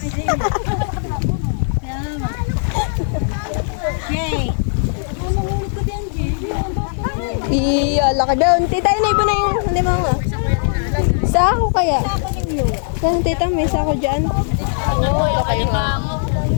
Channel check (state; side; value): silent; right; digital silence